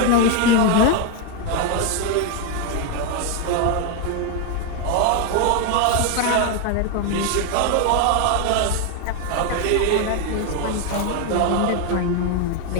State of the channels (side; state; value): both; different; correlation 0.01